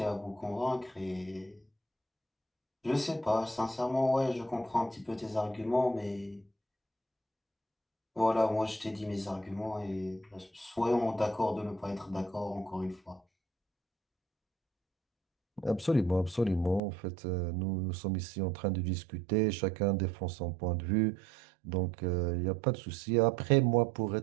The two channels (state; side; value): drops out; left; at 16.8 s